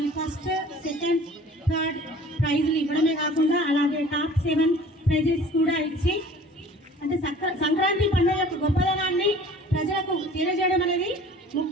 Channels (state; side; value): normal; both; correlation 0.47